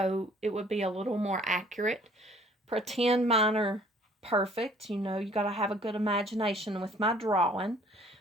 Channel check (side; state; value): both; normal; correlation 0.56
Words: it would be a little more accurate. Pretend mine are perfect. You know, you got to have a good imagination with my drawing.